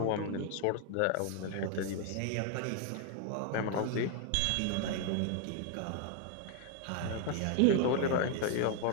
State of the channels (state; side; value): different; both; correlation 0.00